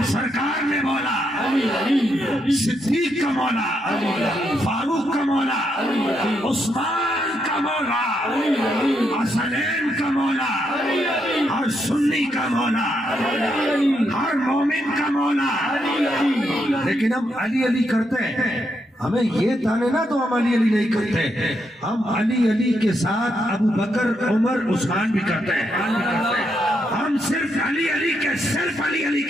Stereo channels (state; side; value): normal; both; correlation 0.79